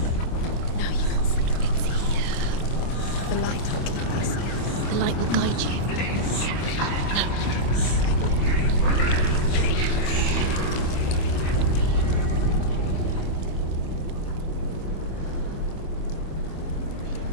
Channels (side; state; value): right; late; 25 ms